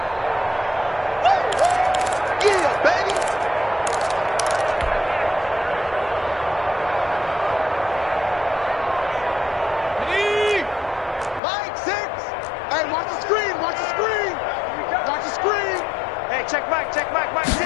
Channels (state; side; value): drops out; right; at 11.4 s